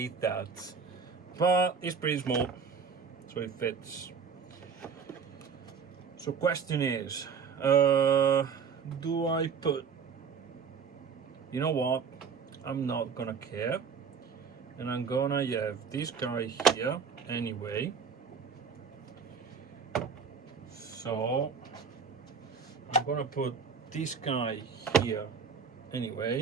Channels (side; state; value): left; quieter; 6.0 dB